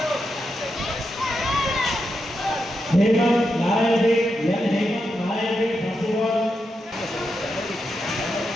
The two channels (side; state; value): both; normal; correlation 0.86